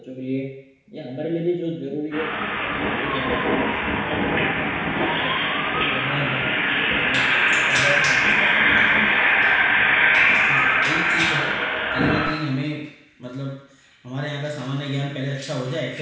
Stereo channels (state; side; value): identical; both; correlation 1.00